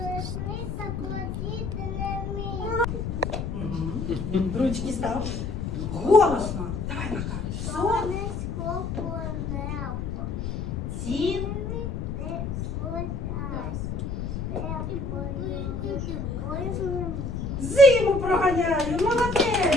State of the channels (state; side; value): noise; left; rumble, 3 dB below the sound